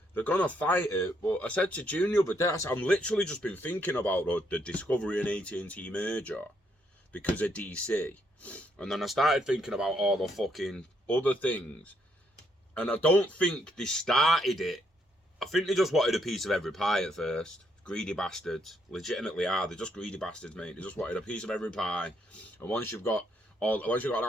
They're going to fight it. But I said to June the other day, I said, I'm literally just been thinking about the Discovery and AT&T merger because of DC. And then I started thinking about all the fucking other things. And I don't think they started it. I think they just wanted a piece of every pie at first. Greedy bastards. Legitimately are. They're just greedy bastards, mate. They just wanted a piece of every pie. And once you've got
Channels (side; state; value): both; normal; correlation 0.74